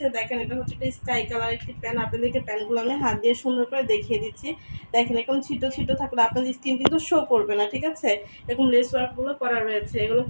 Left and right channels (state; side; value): inverted; both; correlation -1.00